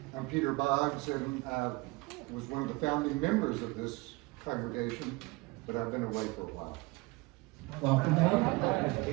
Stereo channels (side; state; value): left; quieter; 24.2 dB